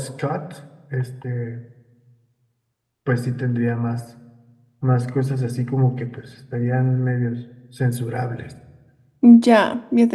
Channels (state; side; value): identical; both; correlation 1.00